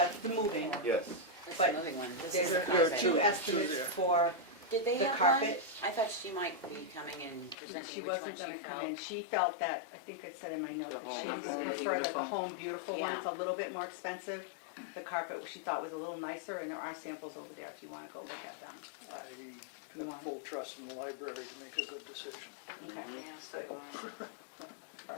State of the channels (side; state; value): right; drops out; at 7.6 s